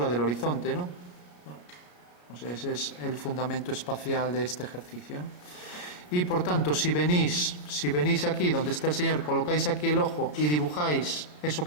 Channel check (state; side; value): late; right; 33 ms